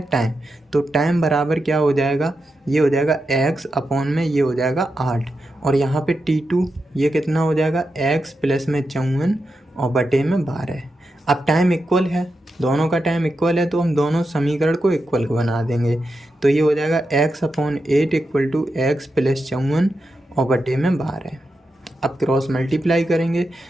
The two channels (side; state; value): both; normal; correlation 0.88